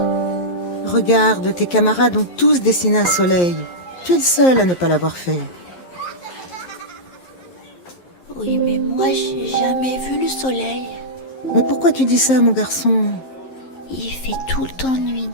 Regarde, tes camarades ont tous dessiné un soleil. Tu es le seul à ne pas l'avoir fait. Oui, mais moi, j'ai jamais vu le soleil. Mais pourquoi tu dis ça, mon garçon? Il fait tout le temps nuit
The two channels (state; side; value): late; right; 11 ms